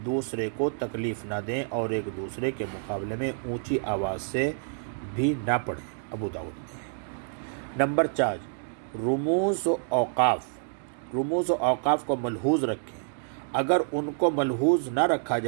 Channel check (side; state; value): left; silent; digital silence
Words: دوسرے کو تکلیف نہ دیں اور ایک دوسرے کے مقابلے میں اونچی آواز سے بھی نہ پڑھیں۔ ابو داؤد میں۔ نمبر 4 رموز و اوقاف، رموز و اوقاف کو ملحوظ رکھیں۔ اگر ان کو ملحوظ نہ رکھا